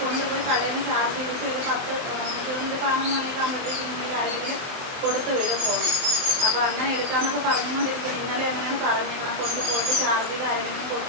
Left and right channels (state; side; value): late; left; 23 ms